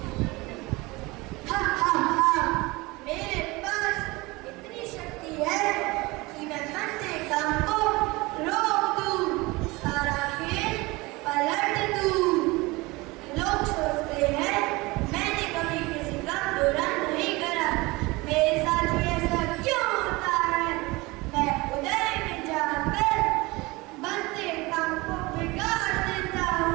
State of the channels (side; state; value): left; quieter; 23.0 dB